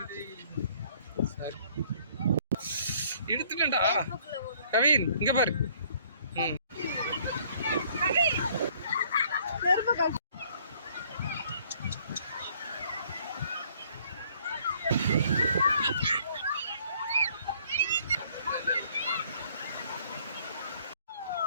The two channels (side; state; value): both; inverted; correlation -0.61